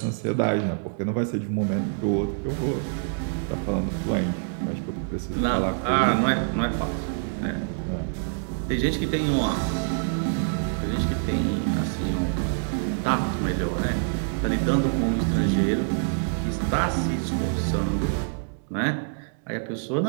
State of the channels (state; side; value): silent; left; digital silence